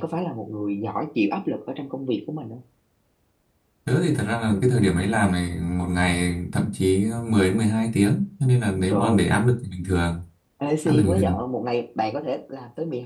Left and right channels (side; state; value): both; identical; correlation 1.00